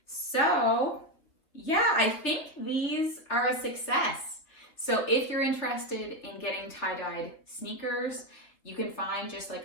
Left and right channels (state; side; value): late; right; 3.4 ms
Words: So yeah, I think these are a success. So if you're interested in getting tie-dyed sneakers, you can find just